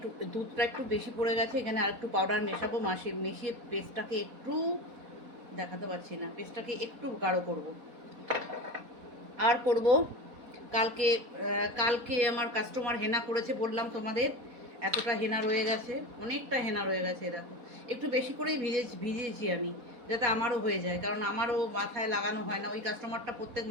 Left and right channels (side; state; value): left; late; 4.1 ms